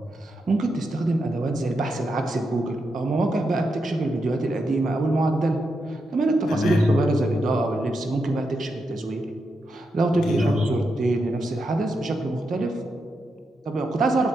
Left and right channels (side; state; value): both; normal; correlation 0.85